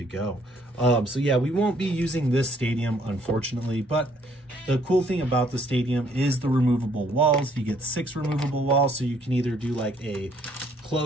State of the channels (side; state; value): both; normal; correlation 0.65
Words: go. So yeah, we won't be using this stadium, unfortunately, but the cool thing about the stadium is the removable walls. You get 6 removable walls, so you can either do like a